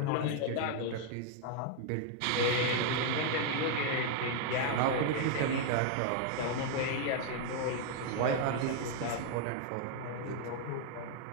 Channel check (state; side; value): different; both; correlation 0.00